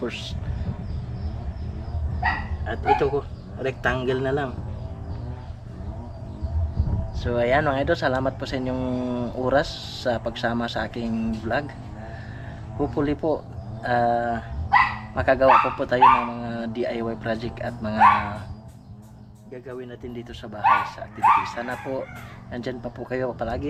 first. At ito ko, rectangle na lang. So ayan mga idol, salamat po sa inyong oras sa pagsama sa aking vlog. Hopefully po makagawa po tayo ng mga DIY project at mga gagawin natin dito sa bahay sa activities. Sana po nandyan pa po kayo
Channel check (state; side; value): identical; both; correlation 1.00